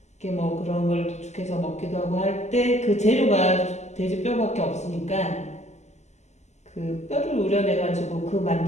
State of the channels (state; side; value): late; right; 0.33 ms